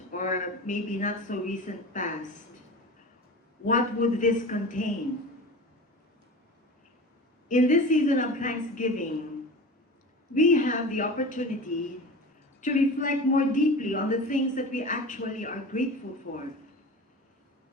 or maybe not so recent past, what would this contain? In this season of Thanksgiving, we have the opportunity to reflect more deeply on the things that we actually are grateful for.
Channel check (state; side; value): normal; both; correlation 0.33